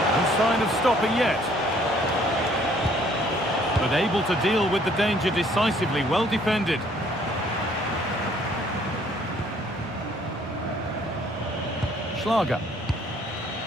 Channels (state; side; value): normal; both; correlation 0.61